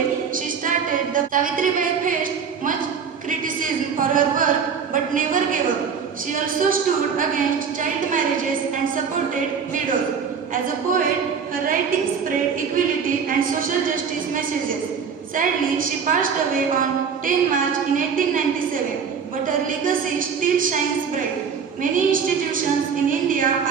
she started the Savitribai faced much criticism for her work but never gave up. She also stood against child marriages and supported widows. As a poet, her writings spread equality and social justice messages. Sadly, she passed away on 10 March in 1897, but her legacy still shines bright. Many institutions in India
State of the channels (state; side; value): quieter; left; 6.5 dB